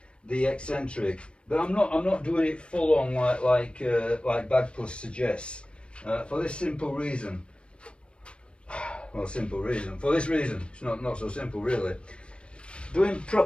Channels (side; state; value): right; late; 0.057 ms